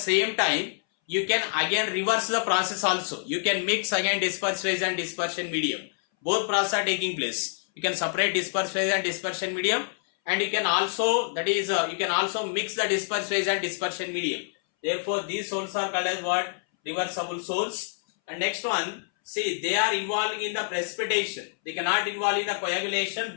time, you can again reverse the process also. You can mix again disperse phase and dispersion medium. Both process are taking place. You can separate disperse phase and dispersion medium, and you can also you can also mix the disperse phase and dispersion medium. Therefore, these soles are called as what? Reversible soles. And next one, see, they are involved in the precipitation. They cannot involve in the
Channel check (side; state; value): right; silent; 60 dB below the other